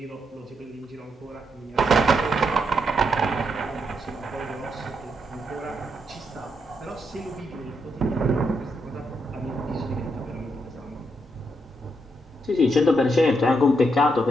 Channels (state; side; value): normal; both; correlation 0.79